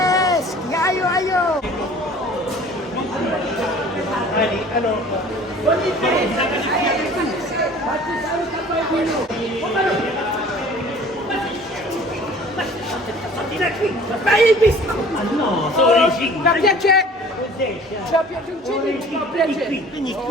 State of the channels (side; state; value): both; normal; correlation 0.48